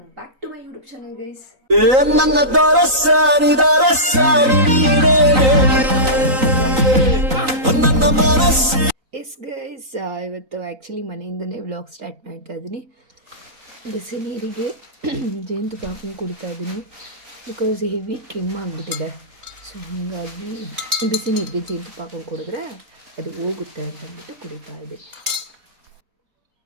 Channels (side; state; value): left; late; 3.9 ms